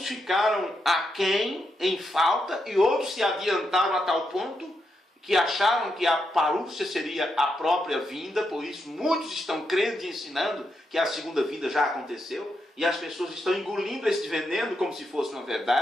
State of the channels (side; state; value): both; normal; correlation 0.83